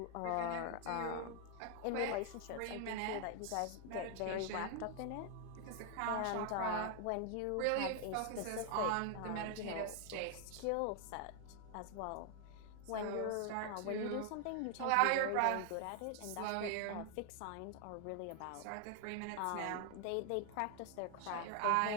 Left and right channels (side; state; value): both; different; correlation 0.00